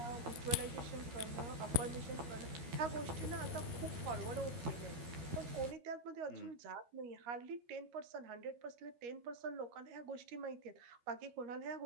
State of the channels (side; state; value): left; late; 12 ms